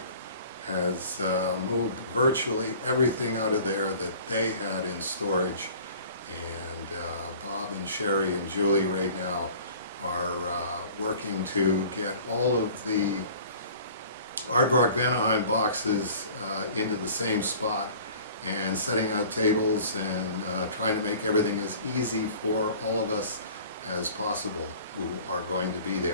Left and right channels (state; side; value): inverted; both; correlation -0.46